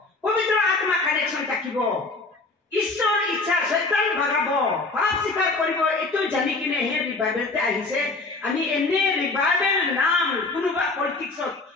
পবিত্ৰ আত্মা কানেকশ্যন থাকিব ঈশ্বৰ ইচ্ছা শয়তান ভাগাব পাপ স্বীকাৰ কৰিব এইটো জানি কিনে হে ৰিভাইভেলতে আহিছে আমি এনে ৰিভাইভেল নাম কোনোবা পলিটিক্সত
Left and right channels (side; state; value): right; quieter; 3.5 dB